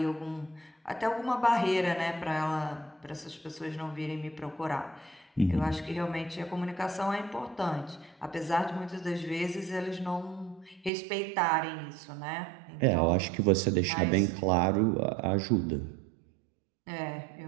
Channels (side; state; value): left; drops out; at 10.9 s